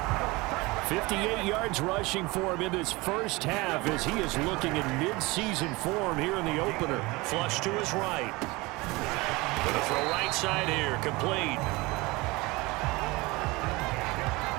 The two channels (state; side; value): quieter; left; 23.2 dB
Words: 58 yards rushing for him in this first half as he is looking in mid-season form here in the opener. Flush to his right. Going to throw right side here, complete.